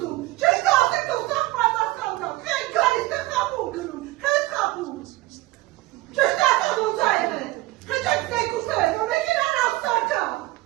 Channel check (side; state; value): left; quieter; 19.2 dB